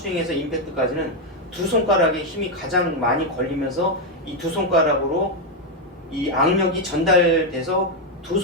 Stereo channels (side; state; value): both; normal; correlation 0.03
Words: 임팩트까지는 두 손가락에 힘이 가장 많이 걸리면서 이 두 손가락으로 이 악력이 전달돼서 두